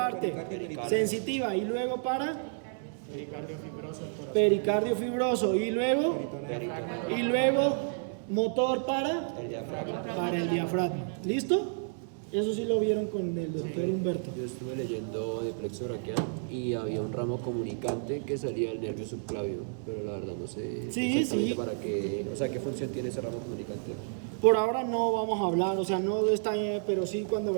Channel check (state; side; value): silent; left; 57 dB below the other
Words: sensitiva, y luego para pericardio fibroso, y luego motor para el diafragma. ¿Listo? Eso sí lo vieron con el doctor Humberto. Yo estuve leyendo de plexo braquial y había un ramo comunicante que salía del nervio subclavio, pero la verdad no sé exactamente para qué, o sea, qué función tiene ese ramo comunicante. Por ahora no vamos a hablar, o sea, no está bien, pero sí cuando